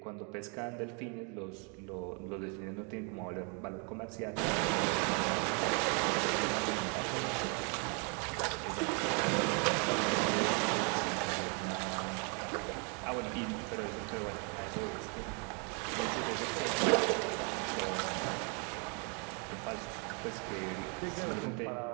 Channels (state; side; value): quieter; left; 36.7 dB